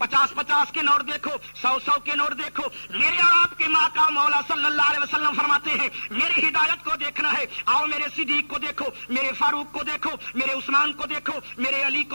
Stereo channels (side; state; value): both; inverted; correlation -1.00